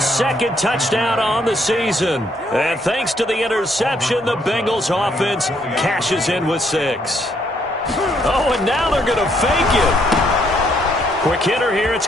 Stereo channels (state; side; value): normal; both; correlation 0.71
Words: 2nd touchdown on the season. And thanks to the interception, the Bengals offense cashes in with 6. Oh, and now they're going to fake it. Quick hitter here, it's